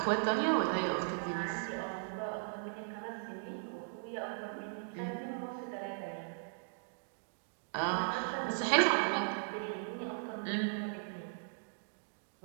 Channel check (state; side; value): silent; left; digital silence